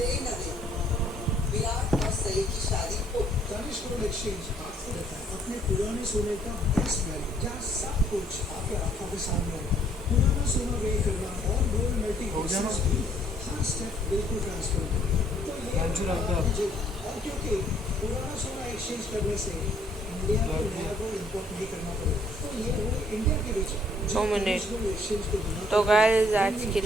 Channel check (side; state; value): both; normal; correlation 0.64